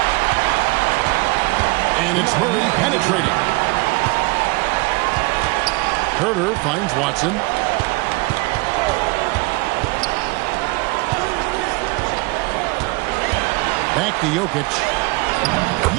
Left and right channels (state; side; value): quieter; left; 25.0 dB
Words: And it's Murray penetrating. Herter finds Watson. Back to Jokic.